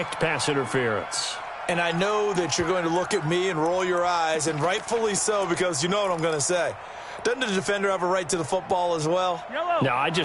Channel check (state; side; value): identical; both; correlation 1.00